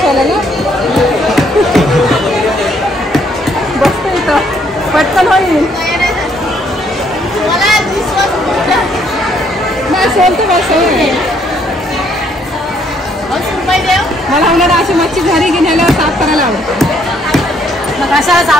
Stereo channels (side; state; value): both; normal; correlation 0.68